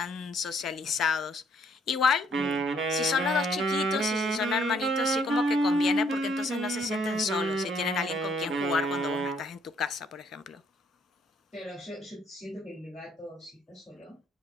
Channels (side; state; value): both; normal; correlation 0.66